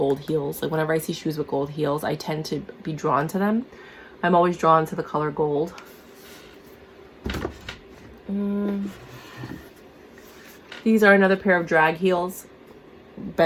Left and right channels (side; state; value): both; identical; correlation 1.00